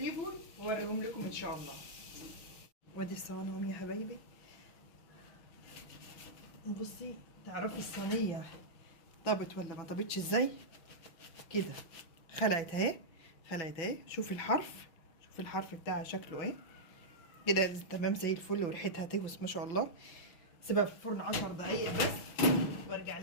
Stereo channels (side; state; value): right; late; 5.9 ms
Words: واوريهم لكم ان شاء الله. وادي الصواني يا حبايبي. بصي تعرفي الصينيه طابت ولا ما طابتش ازاي؟ كده خلعت اهي، خلعت اهي. شوفي الحرف، شوفي الحرف بتاعها شكله ايه كده. تمام زي الفل، وريحتها تهوس ما شاء الله. سيبها في الفرن 10 دقايق بس وارجع